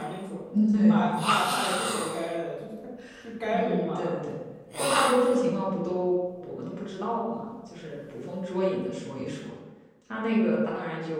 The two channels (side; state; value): both; identical; correlation 1.00